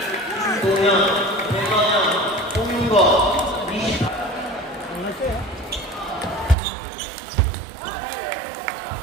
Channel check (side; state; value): left; drops out; at 6.6 s